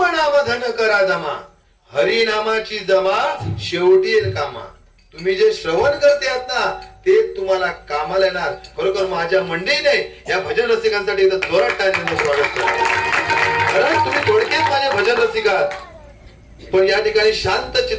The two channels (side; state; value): both; identical; correlation 1.00